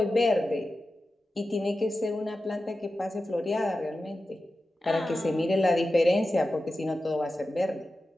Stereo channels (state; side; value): normal; both; correlation 0.93